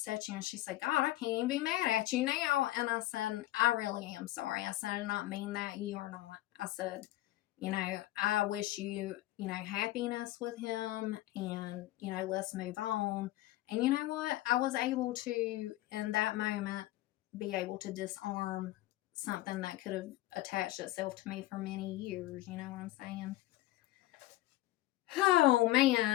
you. And she said, God, I can't even be mad at you now. And I said, I really am sorry. I said, I did not mean that. You are not. I said, you know, I wish you, you know, happiness with him, and, you know, let's move on. And you know what? I was able to, in that moment, be able to disarm something that could have attached itself to me for many years. You know what I'm saying? Oh,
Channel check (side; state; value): right; quieter; 16.4 dB